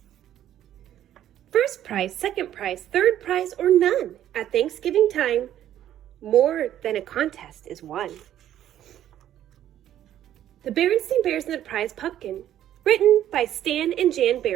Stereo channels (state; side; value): quieter; left; 11.6 dB